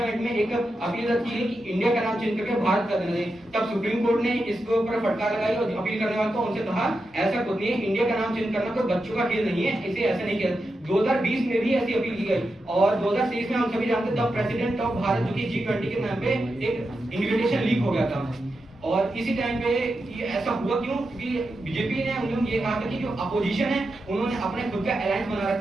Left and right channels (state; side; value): normal; both; correlation 0.88